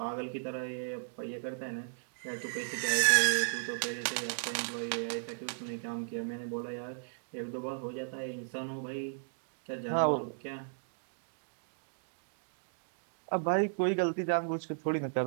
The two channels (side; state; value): left; silent; digital silence